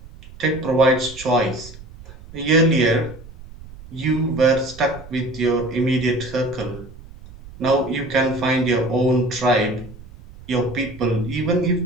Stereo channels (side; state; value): right; noise; rumble, 18 dB below the sound